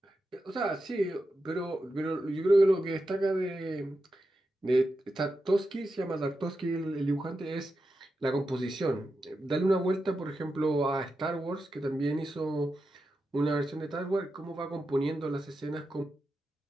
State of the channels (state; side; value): normal; both; correlation 0.89